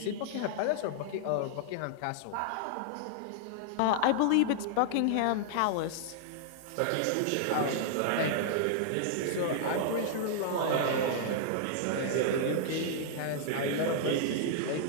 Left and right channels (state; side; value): different; both; correlation -0.01